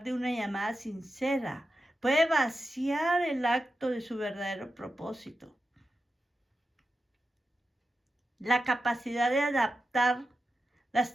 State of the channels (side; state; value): both; normal; correlation 0.90